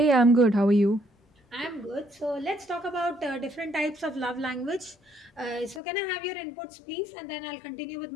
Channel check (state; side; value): drops out; right; at 5.8 s